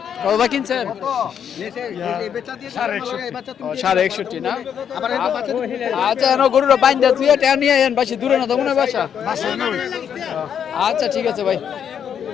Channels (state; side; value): quieter; right; 8.3 dB